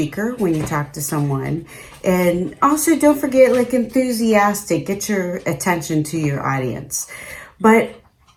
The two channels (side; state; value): both; identical; correlation 1.00